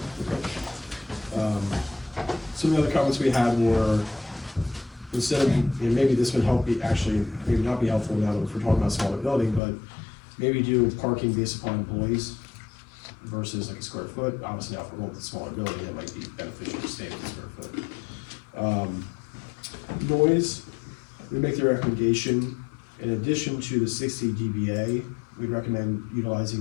Some of the other comments we had were, instead of, and maybe this would help be, actually, maybe not be helpful now that we're talking about a smaller building, but maybe do parking based upon employees versus like a square foot. Obviously now if we're going with a smaller building, it might be beneficial to stay with a square foot. Noise, we make the recommendation, in addition to the 60 dBA, we'd recommend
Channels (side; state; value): right; drops out; at 9.6 s